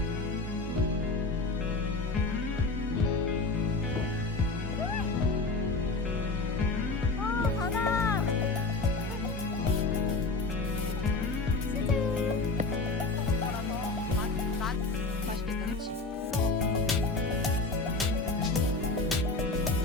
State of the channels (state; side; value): quieter; right; 3.4 dB